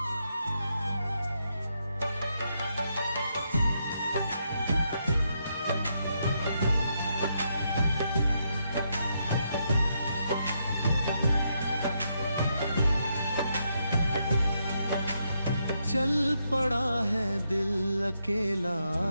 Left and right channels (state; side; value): inverted; both; correlation -0.80